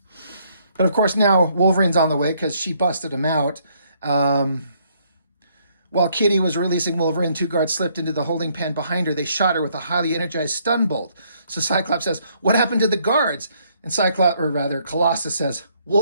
of course now Wolverine's on the way because she busted him out. While Kitty was releasing Wolverine, two guards slipped into the holding pen behind her. They shot her with a highly energized stun bolt. So Cyclops says, what happened to the guards? And Colossus says,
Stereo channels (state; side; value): inverted; both; correlation -0.69